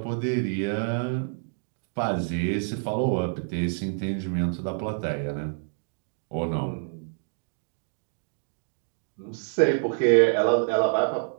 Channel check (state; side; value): silent; left; 60 dB below the other